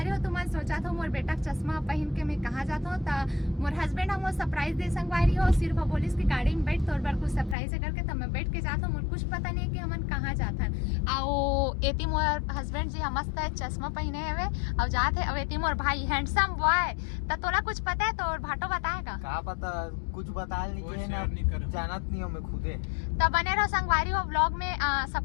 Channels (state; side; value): drops out; right; at 7.6 s